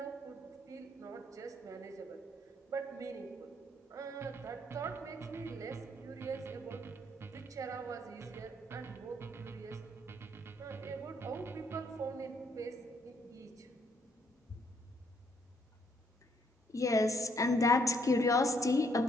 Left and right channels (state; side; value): normal; both; correlation 0.70